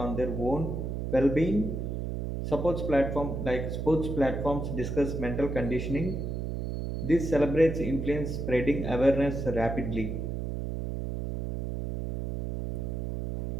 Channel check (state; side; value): noise; right; hum, 3 dB below the sound